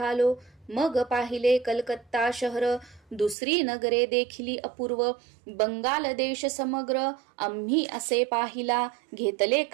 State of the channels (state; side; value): drops out; left; at 3.4 s